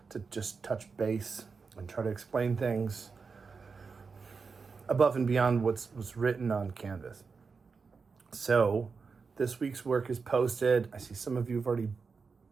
to just touch base and try to explain things above and beyond what's written on Canvas. So this week's work is posted. I see some of you have already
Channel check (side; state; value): left; quieter; 5.0 dB